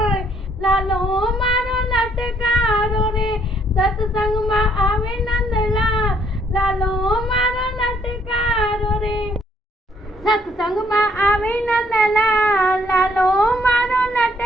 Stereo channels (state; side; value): normal; both; correlation 0.67